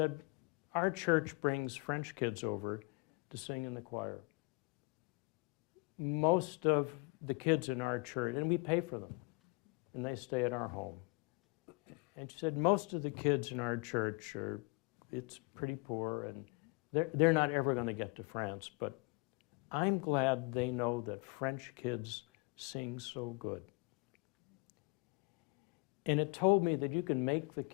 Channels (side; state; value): right; quieter; 28.4 dB